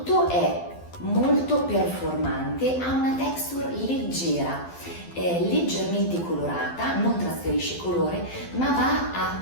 è molto performante, ha una texture leggera, è leggermente colorata, non trasferisce colore, ma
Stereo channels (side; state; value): right; late; 12 ms